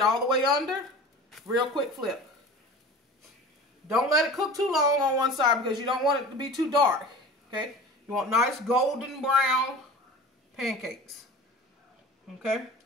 all the way under. Real quick flip. Don't let it cook too long on one side because you don't want it to be too dark. Okay? You want nice golden brown pancakes. Okay?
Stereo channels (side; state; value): both; normal; correlation 0.38